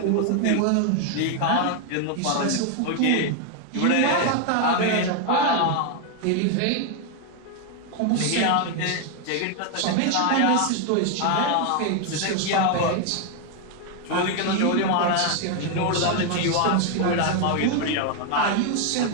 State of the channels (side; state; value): both; different; correlation 0.01